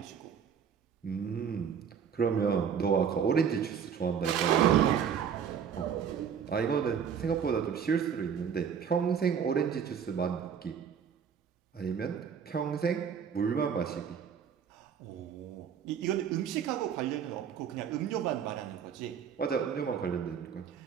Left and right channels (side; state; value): left; quieter; 7.6 dB